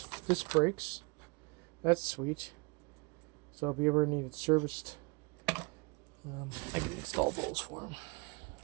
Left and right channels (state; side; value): quieter; left; 29.6 dB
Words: Disc brakes. That's sweet. So if you ever need it serviced, I can install those for them.